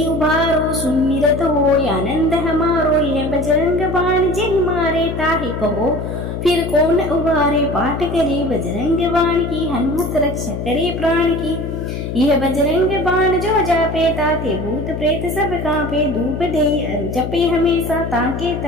उबारो। सुमिरत हो आनंद हमारो यह बजरंग बाण जिन मारे ताहि कहो फिर कौन उबारे। पाठ करे बजरंग बाण की हनुमत रक्षा करे प्राण की। यह बजरंग बाण जो जापे ताते भूत प्रेत सब कांपे। धूप दे अरु जपे हमेशा ताके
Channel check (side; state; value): left; noise; hum, 5 dB below the sound